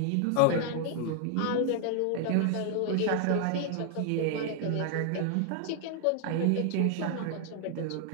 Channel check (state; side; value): different; both; correlation 0.00